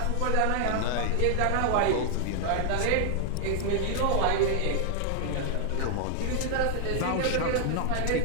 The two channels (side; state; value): both; different; correlation 0.00